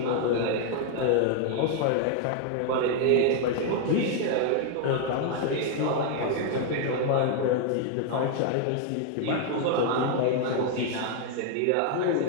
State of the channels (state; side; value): different; both; correlation 0.00